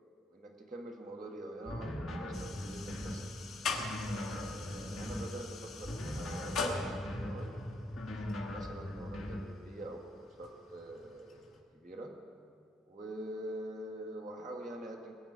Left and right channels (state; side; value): normal; both; correlation 0.73